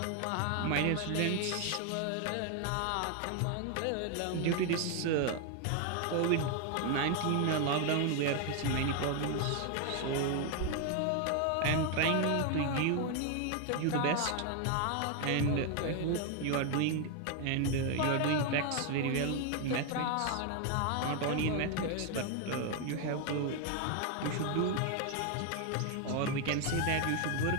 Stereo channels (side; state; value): both; different; correlation 0.01